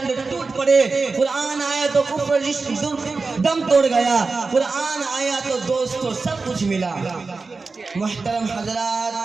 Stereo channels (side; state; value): left; quieter; 4.1 dB